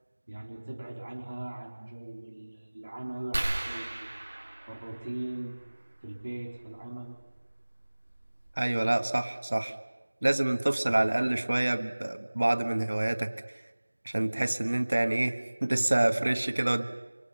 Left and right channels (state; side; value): inverted; both; correlation -1.00